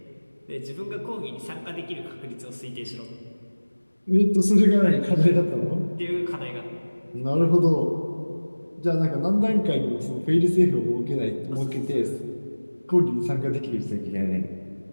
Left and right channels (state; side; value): inverted; both; correlation -1.00